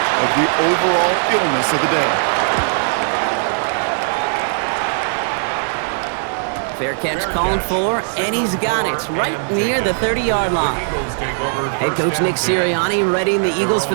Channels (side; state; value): left; silent; 67 dB below the other